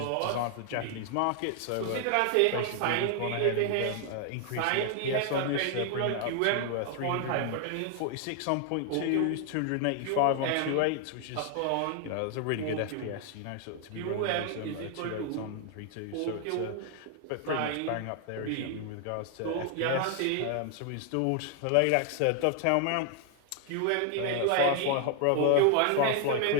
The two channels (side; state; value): both; different; correlation 0.00